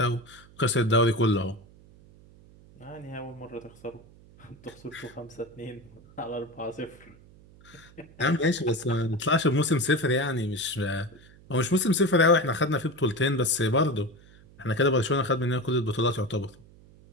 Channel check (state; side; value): noise; right; hum, 24 dB below the sound